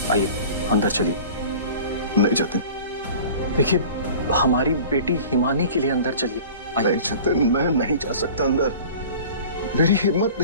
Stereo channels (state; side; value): inverted; both; correlation -0.42